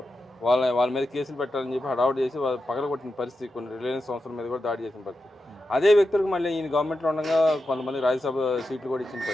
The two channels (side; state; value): both; normal; correlation 0.90